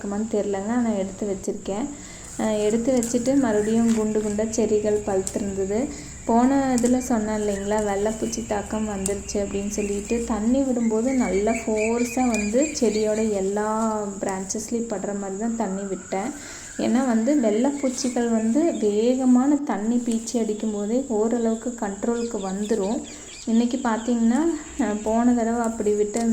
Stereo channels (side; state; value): both; identical; correlation 1.00